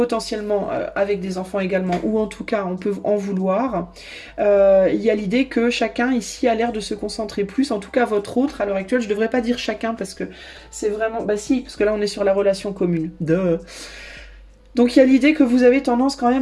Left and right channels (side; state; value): both; identical; correlation 1.00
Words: avec des enfants également, ou en tout cas on peut en vouloir, il y a l'idée que chacun ici a l'air de se concentrer plus, en tout cas votre autre à l'heure actuelle, je devrais pas dire chacun parce que c'est vraiment, bah si, parce que là on est sur la relation commune. Duh. Donc il y a l'idée que vous avez tendance quand